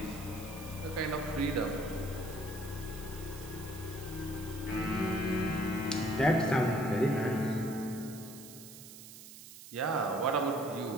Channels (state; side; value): noise; right; hiss, 15 dB below the sound